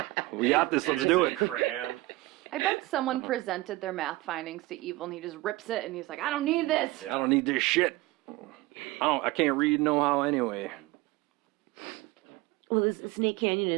we got this, let's It's do a it. crayon. I bet someone presented their math findings to Evil and he just rips it and he's like, I don't need this. I don't need this shit. I can't read no how anyway. Well, this Snake Canyon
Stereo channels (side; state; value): left; quieter; 20.0 dB